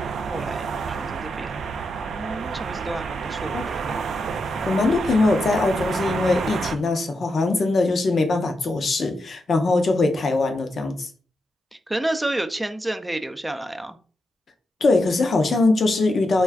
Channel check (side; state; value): both; normal; correlation 0.86